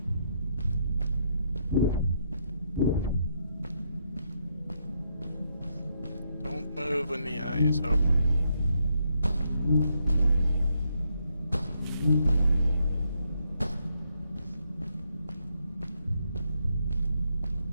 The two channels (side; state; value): both; inverted; correlation -0.77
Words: Don't move when the eye is open.